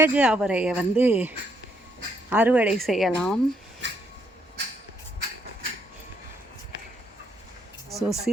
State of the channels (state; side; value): normal; both; correlation 0.73